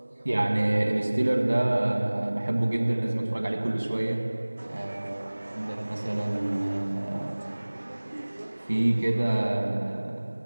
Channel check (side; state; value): both; inverted; correlation -1.00